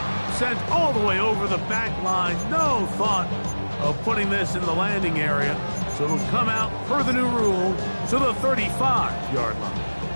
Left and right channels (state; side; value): inverted; both; correlation -1.00